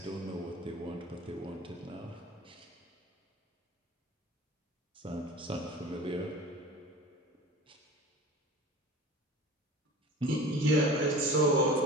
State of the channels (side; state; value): both; normal; correlation 0.38